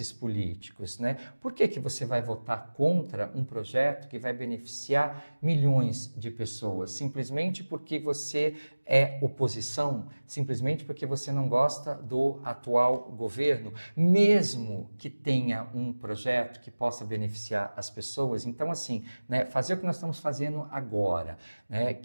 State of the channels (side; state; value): both; inverted; correlation -1.00